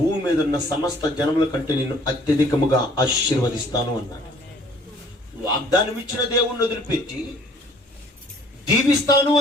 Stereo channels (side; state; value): both; normal; correlation 0.56